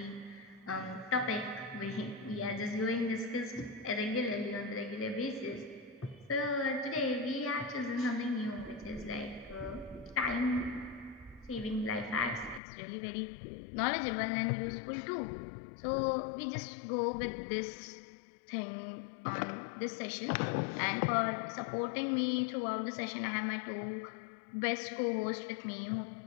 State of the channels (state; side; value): drops out; right; at 12.6 s